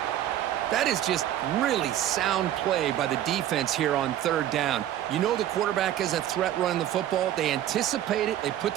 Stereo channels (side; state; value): left; quieter; 12.1 dB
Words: That is just really sound play by the defense here on 3rd down. You know the quarterback is a threat running the football. They anticipate it. They put